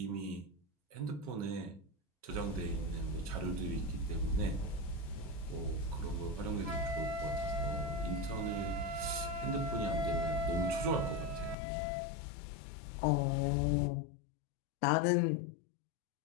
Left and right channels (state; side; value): drops out; right; at 11.6 s